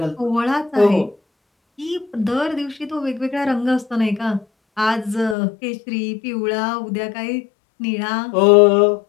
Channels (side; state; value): right; drops out; at 5.4 s